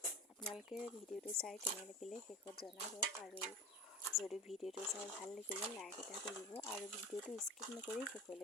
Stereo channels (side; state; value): both; normal; correlation 0.34